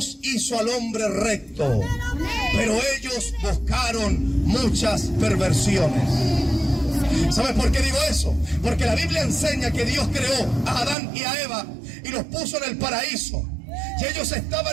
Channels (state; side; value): drops out; left; at 11.0 s